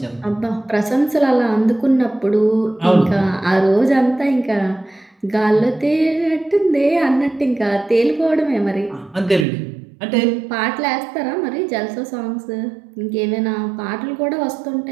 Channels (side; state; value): left; drops out; at 9.5 s